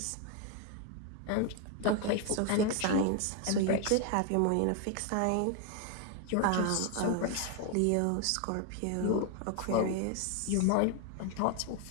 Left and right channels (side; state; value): both; different; correlation 0.01